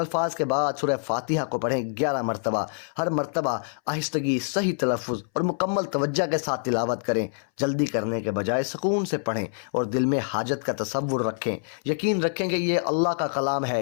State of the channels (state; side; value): silent; right; 61 dB below the other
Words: کے بعد سورہ فاتحہ کو پڑھیں 11 مرتبہ، ہر مرتبہ آہستگی، صحیح تلفظ اور مکمل توجہ کے ساتھ تلاوت کریں۔ جلدی کرنے کے بجائے سکون سے پڑھیں اور دل میں حاجت کا تصور رکھیں۔ یقین رکھیں کہ یہ اللہ کا کلام ہے